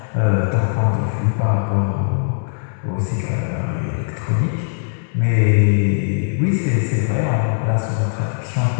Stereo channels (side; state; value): right; silent; digital silence